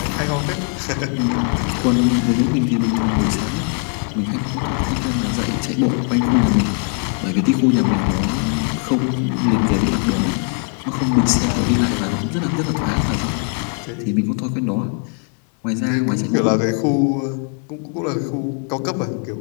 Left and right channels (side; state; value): right; quieter; 39.7 dB